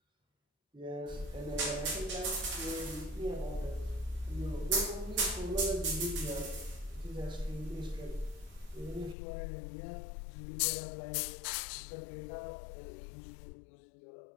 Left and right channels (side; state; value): right; drops out; at 9.2 s